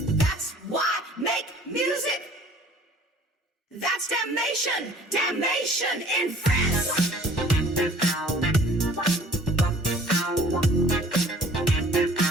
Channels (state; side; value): normal; both; correlation 0.52